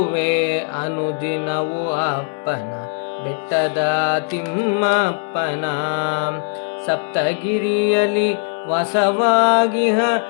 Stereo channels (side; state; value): right; silent; 66 dB below the other